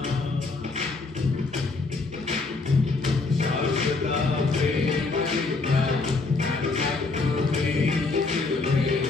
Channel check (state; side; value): quieter; right; 3.8 dB